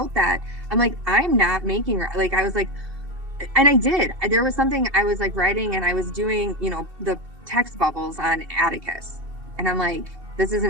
that, I'm like, I'm not making, like, I was like, and I did, there was something I was like writing, and I was doing, the text bubbles on Atticus, and I'm like, this is an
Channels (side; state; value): left; late; 2.7 ms